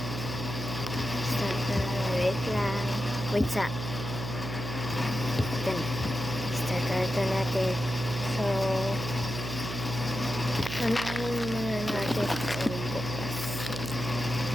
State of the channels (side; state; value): right; noise; hum, 6 dB below the sound